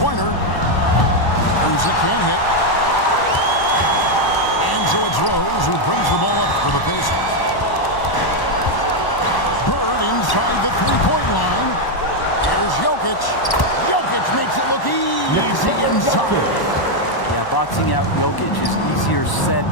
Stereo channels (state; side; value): late; right; 1.0 ms